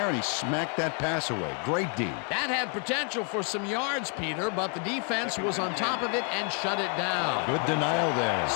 and he smacked that pass away. Great D. That had potential for some yards, Peter, but the defense was on top of it and shut it down. Good denial there.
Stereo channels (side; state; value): right; quieter; 38.0 dB